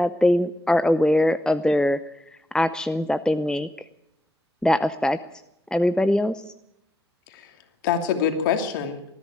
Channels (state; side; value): normal; both; correlation 0.81